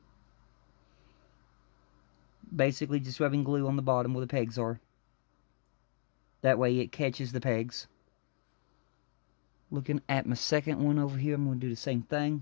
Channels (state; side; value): silent; right; digital silence